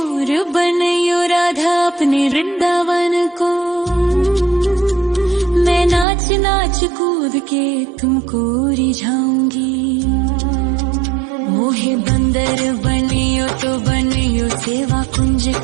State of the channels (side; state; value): left; drops out; at 6.1 s